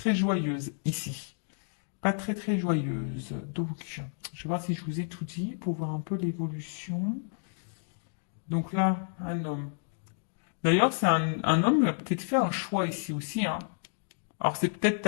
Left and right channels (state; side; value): silent; right; digital silence